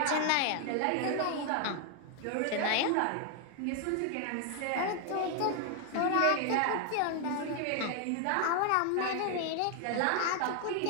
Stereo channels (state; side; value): different; both; correlation 0.00